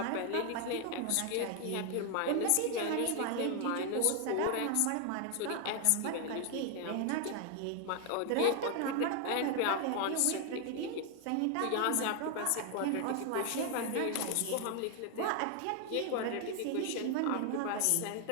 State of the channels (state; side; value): different; both; correlation 0.00